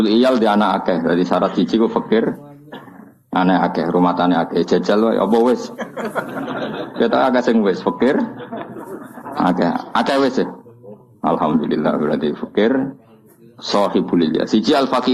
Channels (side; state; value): both; identical; correlation 1.00